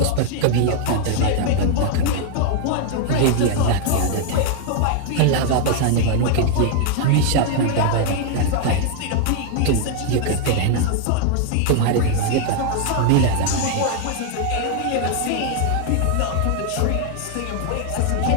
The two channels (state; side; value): different; both; correlation 0.00